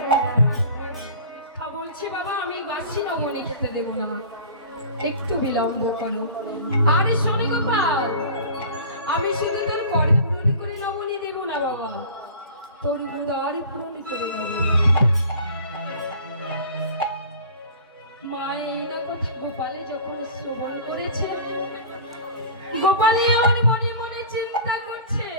বলছি বাবা, আমি বাসি নবনী খেতে দেব না, একটু বিলম্ব করো। আরে শোনে গোপাল, আমি শুধু তোর কর পূরণ করে নবনী দেব না বাবা, তোর উদার পূরণ করে দেব। মা এই না কথা গোপালে যখন শ্রবণ করেছে, গোপালে আমার মনে মনে চিন্তা করছে,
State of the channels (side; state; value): both; inverted; correlation -0.40